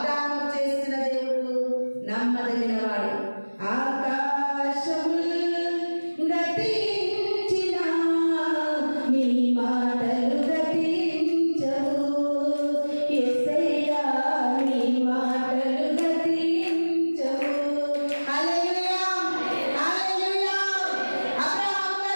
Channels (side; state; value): both; inverted; correlation -1.00